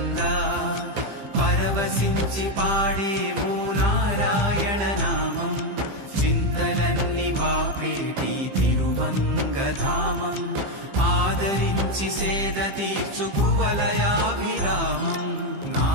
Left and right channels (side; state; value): left; late; 15 ms